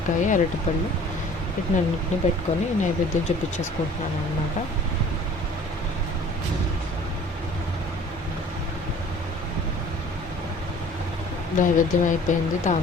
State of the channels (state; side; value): normal; both; correlation 0.50